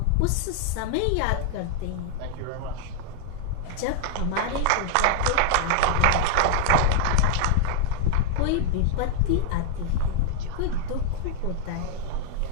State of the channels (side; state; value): both; different; correlation 0.00